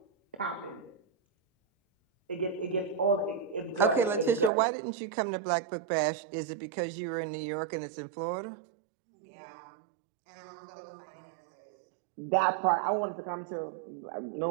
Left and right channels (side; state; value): left; drops out; at 4.5 s